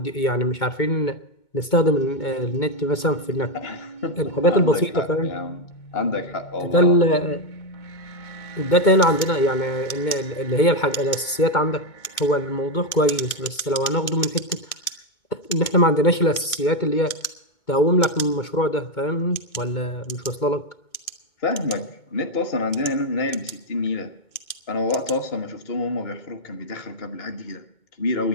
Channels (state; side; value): late; right; 2.2 ms